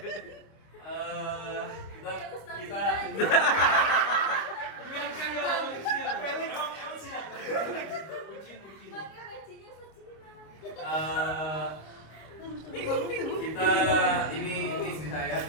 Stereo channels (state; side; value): late; right; 26 ms